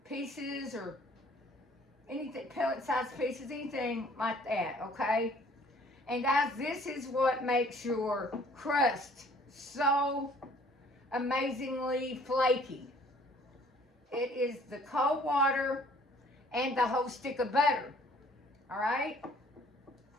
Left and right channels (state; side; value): normal; both; correlation 0.56